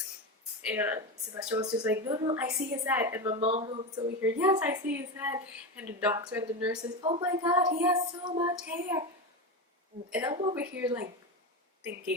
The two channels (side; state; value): both; normal; correlation 0.18